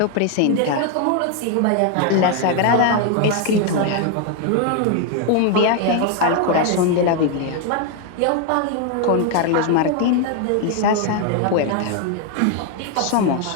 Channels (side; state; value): both; different; correlation 0.00